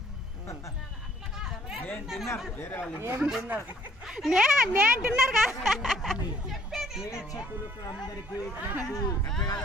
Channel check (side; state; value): both; normal; correlation 0.61